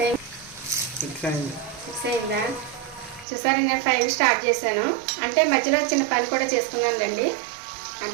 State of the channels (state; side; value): drops out; left; at 3.2 s